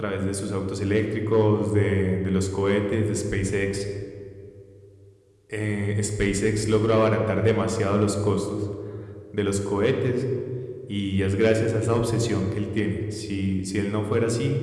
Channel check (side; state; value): both; identical; correlation 1.00